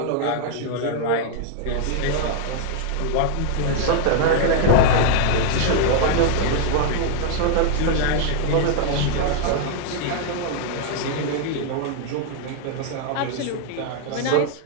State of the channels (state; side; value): different; both; correlation 0.00